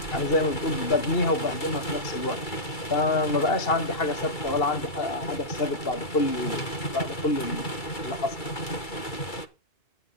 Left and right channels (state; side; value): late; right; 2.3 ms